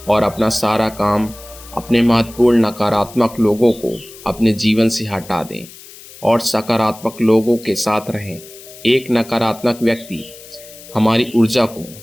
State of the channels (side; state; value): left; noise; hiss, 19 dB below the sound